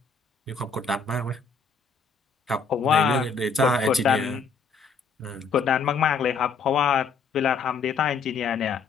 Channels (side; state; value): right; quieter; 5.0 dB